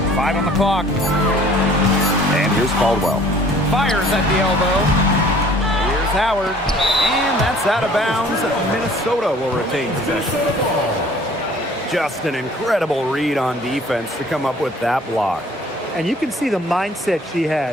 5 on the clock. And here's Caldwell. Fires at the elbow. Here's Howard. And that's out of bounds. Minnesota will retain possession. Just an incredible read on defense to come up with that block. And you can see the mindset she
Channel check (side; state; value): both; normal; correlation 0.53